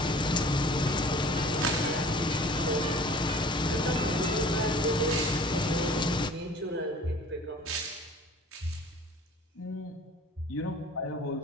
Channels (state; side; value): normal; both; correlation 0.47